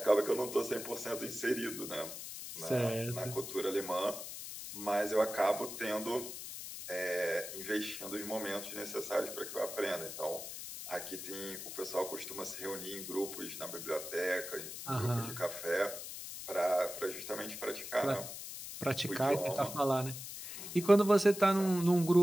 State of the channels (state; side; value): noise; left; hiss, 9 dB below the sound